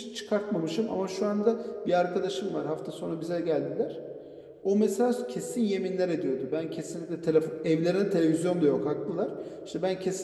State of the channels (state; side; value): identical; both; correlation 1.00